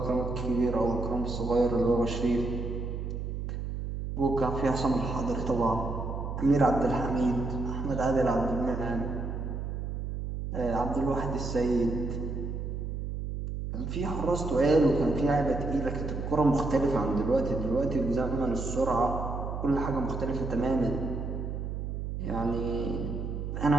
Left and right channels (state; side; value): noise; right; hum, 4 dB below the sound